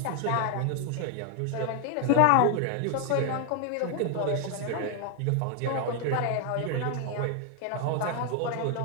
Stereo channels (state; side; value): different; both; correlation 0.00